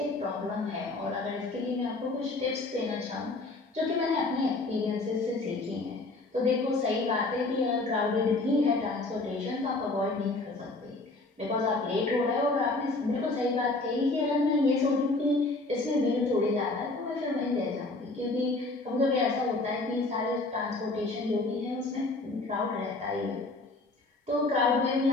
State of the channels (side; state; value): right; quieter; 3.2 dB